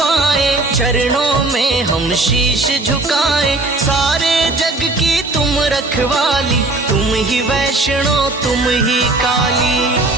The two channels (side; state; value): left; quieter; 3.0 dB